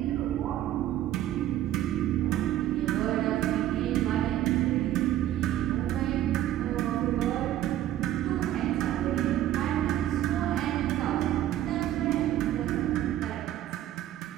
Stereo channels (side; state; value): left; quieter; 12.8 dB